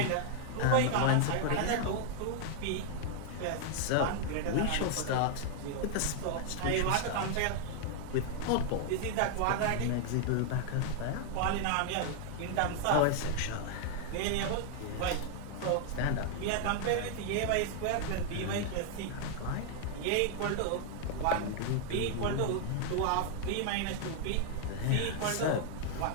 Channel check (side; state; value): both; different; correlation 0.00